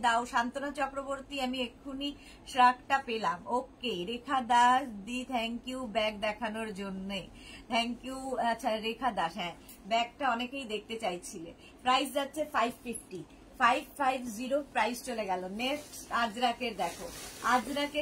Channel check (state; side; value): identical; both; correlation 1.00